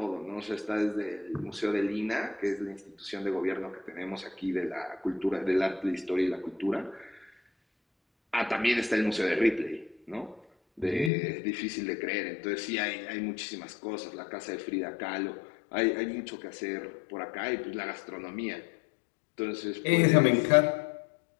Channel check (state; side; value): drops out; right; at 11.1 s